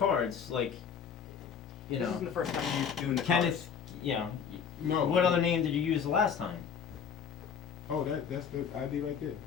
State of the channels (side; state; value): right; quieter; 7.2 dB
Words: like, you This isn't know, the first time you're doing the Kenneth, you know, No. what other name did you use the last time? Oh, that's the ID right there.